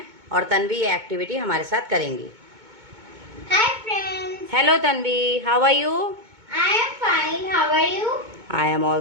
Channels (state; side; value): late; left; 2.2 ms